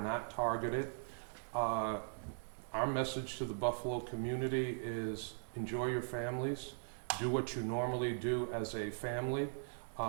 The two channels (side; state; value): left; silent; 51 dB below the other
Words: not targeted. Our message to the Buffalo community is enjoy your families, do what you normally do as a family.